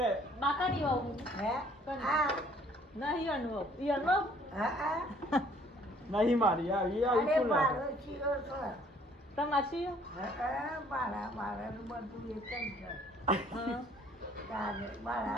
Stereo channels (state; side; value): normal; both; correlation 0.59